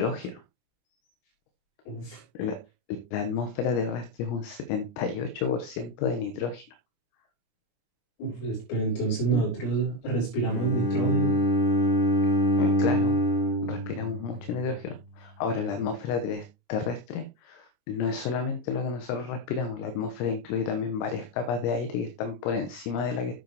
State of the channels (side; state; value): right; late; 17 ms